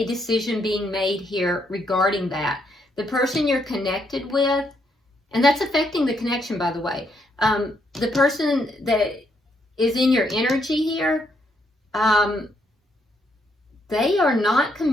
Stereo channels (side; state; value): both; normal; correlation 0.75